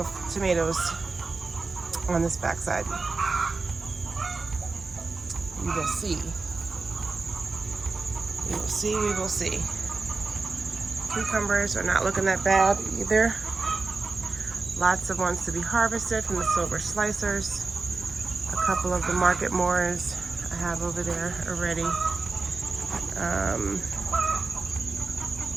tomatoes on this backside. We will see. We will see, we will see. Cucumbers are not looking that bad either. Lots of ones to be harvested from the silver slicers. A couple of the market moors I have over there already.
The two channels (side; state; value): left; quieter; 4.0 dB